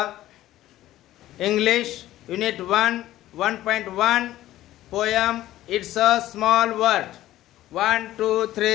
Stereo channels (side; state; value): right; quieter; 14.5 dB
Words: English Unit 1 1.1 Poem It's a Small Word. 1, 2,